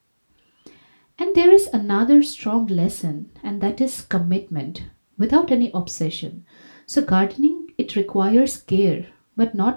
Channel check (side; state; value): both; inverted; correlation -1.00